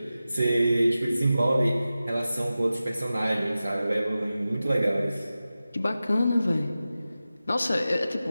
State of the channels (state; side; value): inverted; both; correlation -0.95